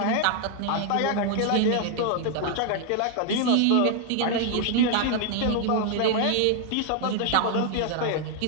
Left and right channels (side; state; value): both; different; correlation 0.00